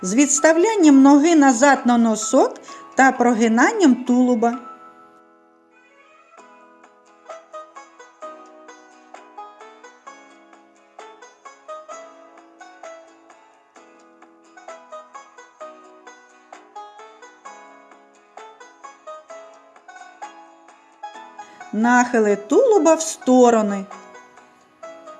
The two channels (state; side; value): identical; both; correlation 1.00